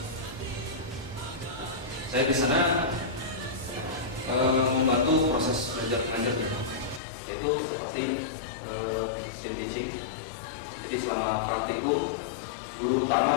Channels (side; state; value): right; drops out; at 7.0 s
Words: Saya di sana membantu proses belajar mengajar, yaitu seperti teaching. Jadi selama praktikum, guru